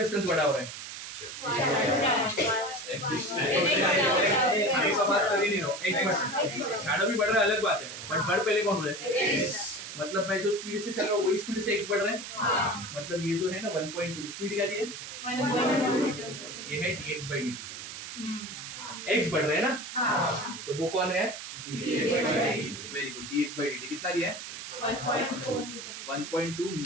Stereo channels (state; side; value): noise; right; hiss, 9 dB below the sound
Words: बड़ा हो रहा है? बात कर ही नहीं रहा, शैडो भी बढ़ रहा है अलग बात है, बट बढ़ पहले कौन रहा है? मतलब मैं जो स्पीड से चल रहा हूँ वही स्पीड से x बढ़ रहा है, मतलब ये जो है ना 1.2 स्पीड क्या दी है? 1.2, ये है dx/dt। x बढ़ रहा है ना, तो वो कौन है? वेरी गुड, dx/dt कितना दिया है? 1.2